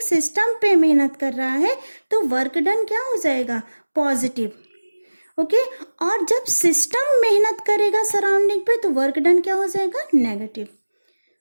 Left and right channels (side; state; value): both; inverted; correlation -1.00